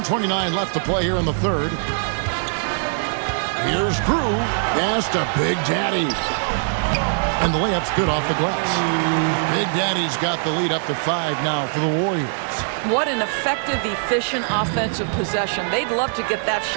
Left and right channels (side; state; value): left; silent; 64 dB below the other